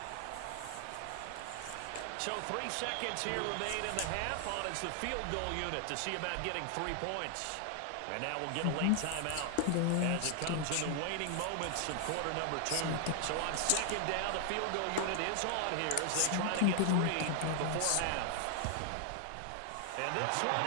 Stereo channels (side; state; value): both; different; correlation 0.00